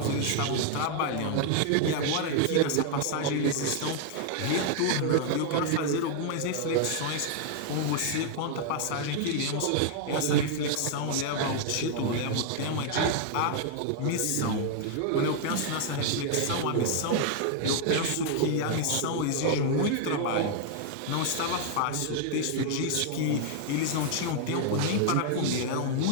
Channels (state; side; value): different; both; correlation 0.00